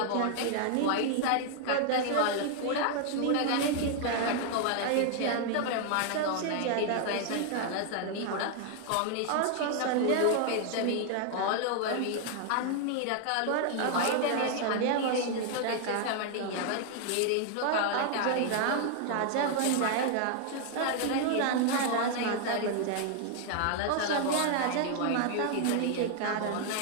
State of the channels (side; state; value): both; different; correlation 0.00